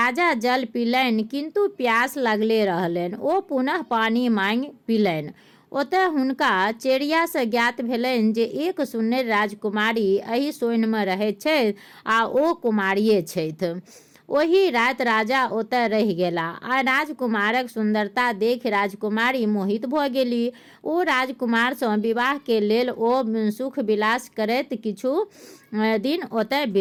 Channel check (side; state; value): both; identical; correlation 1.00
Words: जल पीलनि किंतु प्यास लगले रहलनि। ओ पुनः पानी मांगि पीलनि। ओतय हुनका चेरिया से ज्ञात भेलनि जे एक सुन्नर राजकुमारी एहि सोइन में रहैत छथि आ ओ कुमारिये छथि। ओही रात राजा ओतय रहि गेला आ राजकुमारक सुंदरता देखि राजकुमारी मोहित भऽ गेली। ओ राजकुमार सँ विवाह के लेल ओ सुख विलास करैत किछु दिन ओतय